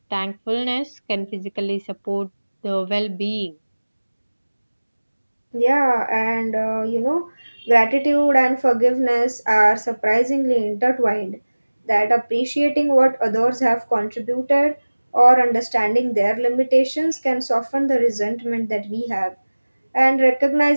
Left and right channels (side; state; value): both; inverted; correlation -1.00